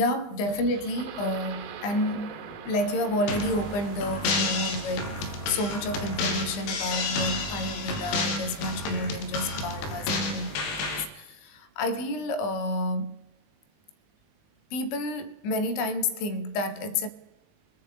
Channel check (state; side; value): late; right; 20 ms